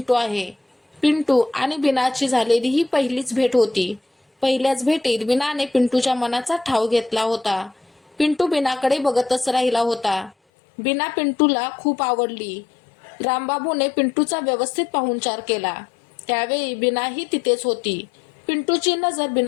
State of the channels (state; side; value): drops out; right; at 10.4 s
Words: आहे. पिंटू आणि बीनाची झालेली ही पहिलीच भेट होती. पहिल्याच भेटीत बीनाने पिंटूच्या मनाचा ठाव घेतला होता. पिंटू बीनाकडे बघतच राहिला होता. बीना पिंटूला खूप आवडली. रामबाबूने पिंटूचा व्यवस्थित पाहुणचार केला. त्यावेळी बीनाही तिथेच होती. पिंटूची नजर